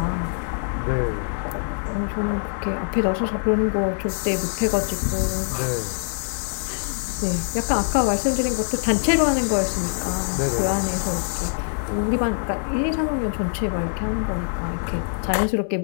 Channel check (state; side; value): silent; right; digital silence